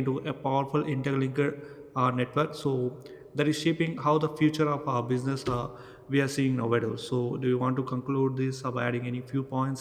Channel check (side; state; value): both; identical; correlation 1.00